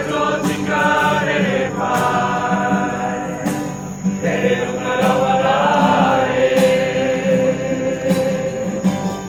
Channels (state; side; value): identical; both; correlation 1.00